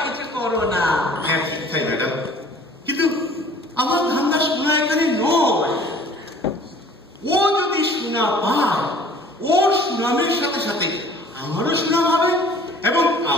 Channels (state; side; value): normal; both; correlation 0.51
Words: কিছু করো না। হ্যাঁ ঠিক তাই ম্যাডাম, কিন্তু আমার ধান্দা সোনা এখানে নয়। ও যদি সোনা পায় ওর সুনামের সাথে সাথে আমারও সুনাম হবে এবং